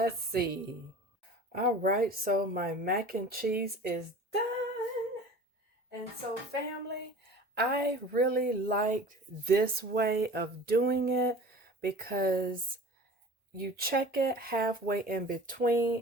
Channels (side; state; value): both; normal; correlation 0.41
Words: see. All right, so my mac and cheese is done. And so, family, I really liked this way of doing it because you check it halfway in